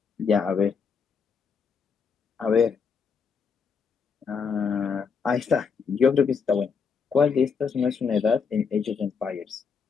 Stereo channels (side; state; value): right; quieter; 5.9 dB